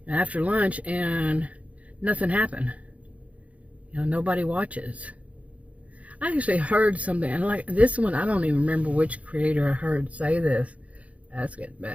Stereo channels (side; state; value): left; late; 0.067 ms